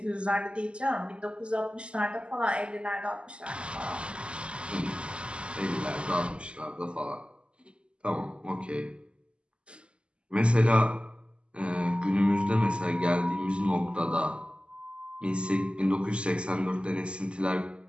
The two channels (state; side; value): late; left; 0.054 ms